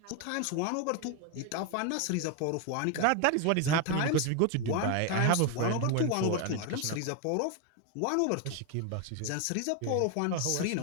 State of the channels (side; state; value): both; different; correlation 0.01